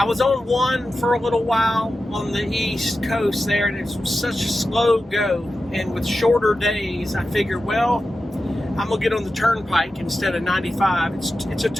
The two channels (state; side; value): normal; both; correlation 0.92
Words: was on 1 for a little while on the East Coast there, and it's such a slow go. And with shorter days, I figured, well, I'm gonna get on the turnpike instead of 95. It's a